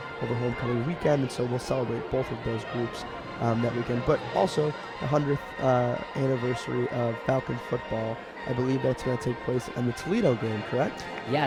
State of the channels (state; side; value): identical; both; correlation 1.00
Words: over homecoming weekend, and so we'll celebrate both of those groups that weekend. But also the 100th anniversary of Falcon football. I believe that's going to take place in the Toledo game, correct?